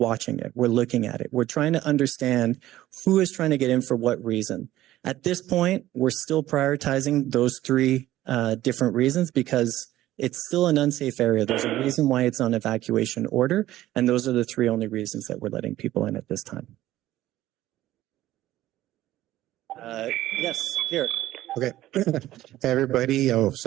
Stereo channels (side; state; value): left; quieter; 14.8 dB